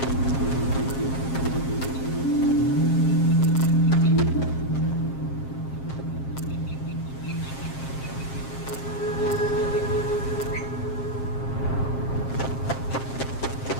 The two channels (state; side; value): late; right; 7.5 ms